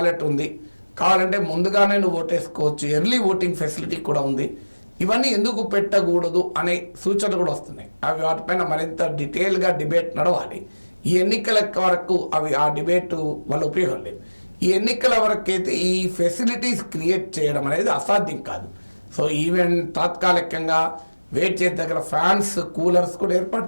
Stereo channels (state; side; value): inverted; both; correlation -1.00